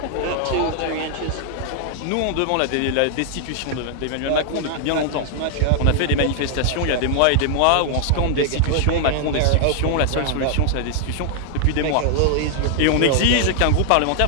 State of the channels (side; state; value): both; different; correlation 0.00